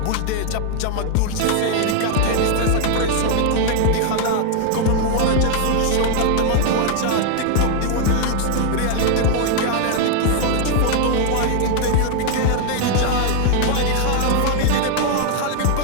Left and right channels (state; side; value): different; both; correlation 0.00